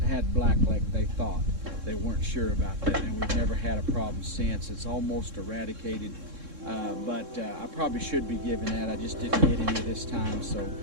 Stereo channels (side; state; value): left; late; 3.7 ms